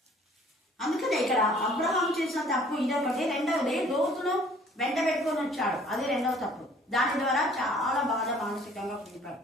అందుకనే ఇక్కడ అబ్రహాం చేసిన తప్పు ఇదొకటి. రెండవది లోతును వెంట పెట్టుకొని వచ్చాడు. అది రెండవ తప్పు. దాని ద్వారా చాలా బాగా మానసికంగా కుదిపాడు.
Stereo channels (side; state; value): both; normal; correlation 0.55